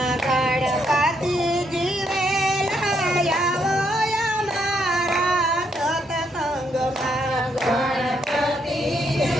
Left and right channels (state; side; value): normal; both; correlation 0.75